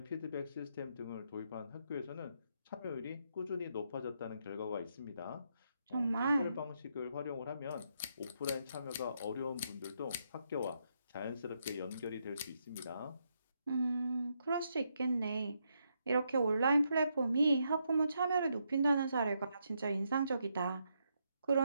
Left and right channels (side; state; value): both; inverted; correlation -0.79